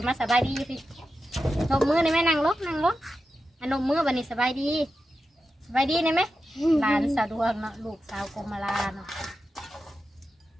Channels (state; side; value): normal; both; correlation 0.91